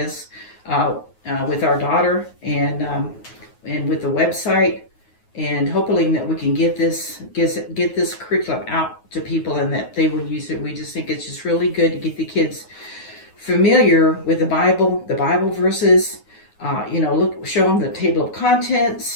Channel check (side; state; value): right; late; 9.4 ms